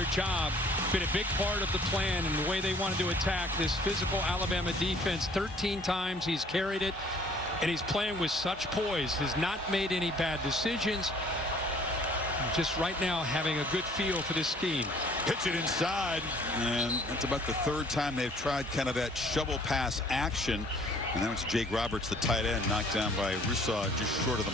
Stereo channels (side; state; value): both; normal; correlation 0.56